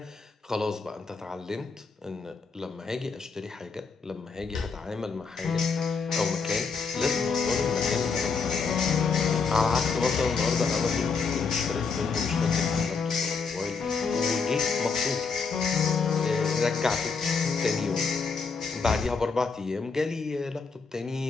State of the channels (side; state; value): right; quieter; 5.0 dB